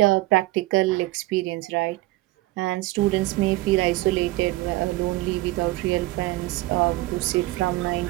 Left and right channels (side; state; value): left; quieter; 19.5 dB